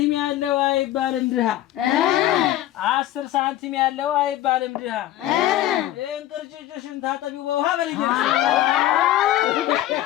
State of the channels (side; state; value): right; quieter; 13.8 dB